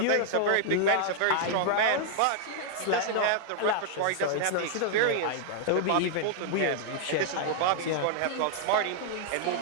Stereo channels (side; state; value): both; different; correlation -0.01